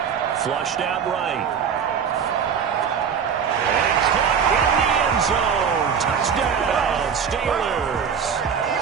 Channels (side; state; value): left; quieter; 7.1 dB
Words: Flushed out right. And caught in the end zone. Touchdown, Steelers.